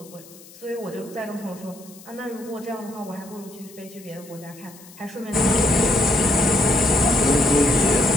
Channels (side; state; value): left; noise; hiss, 21 dB below the sound